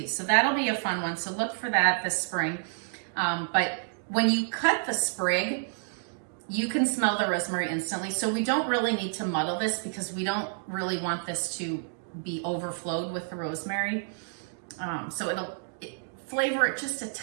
So that'll be a fun one. So look for that this spring. But when you cut the sprig, you can smell the rosemary instantly. So we don't really need to muddle this because we don't really want this to be overflowed with the rosemary. So it'll flavor it just a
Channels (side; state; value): left; silent; digital silence